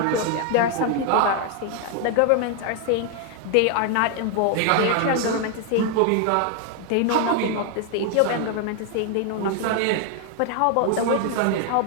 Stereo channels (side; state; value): both; different; correlation 0.00